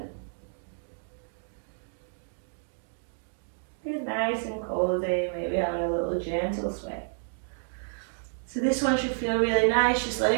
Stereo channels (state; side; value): silent; left; digital silence